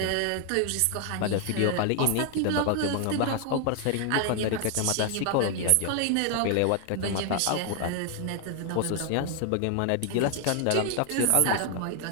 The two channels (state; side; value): different; both; correlation 0.00